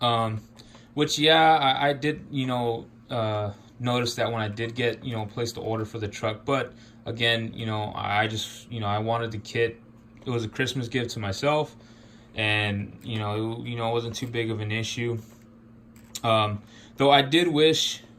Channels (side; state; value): both; identical; correlation 1.00